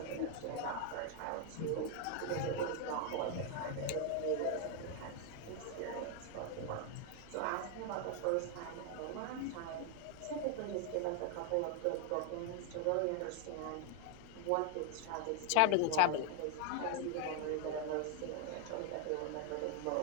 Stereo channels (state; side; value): different; both; correlation 0.00